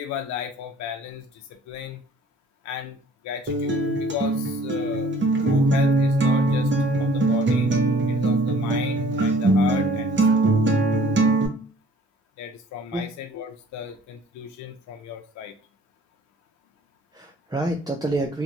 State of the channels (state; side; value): normal; both; correlation 0.53